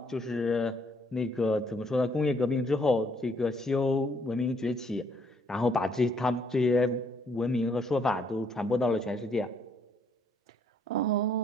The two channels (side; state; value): both; normal; correlation 0.67